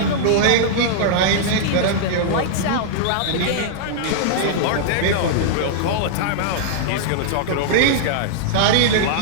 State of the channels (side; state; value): both; different; correlation -0.01